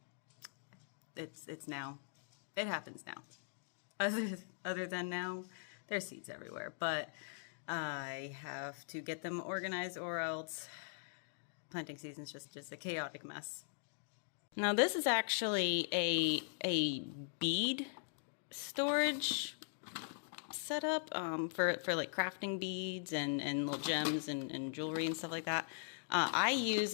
it's now. It happens now. Other than now, there's seeds everywhere, but I have to get them organized, or else planting season's just a chaotic mess. Now this is actually a bead storage setup for like crafting beads and little gems and jewelry and stuff like that. I use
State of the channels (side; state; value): right; silent; digital silence